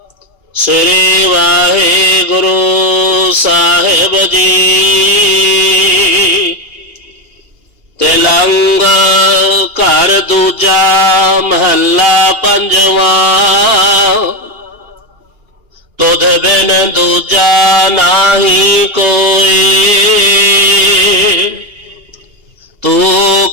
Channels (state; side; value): late; left; 2.8 ms